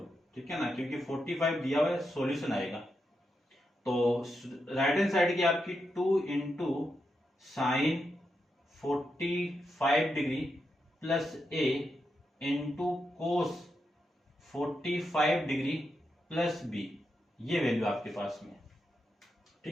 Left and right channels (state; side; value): normal; both; correlation 0.85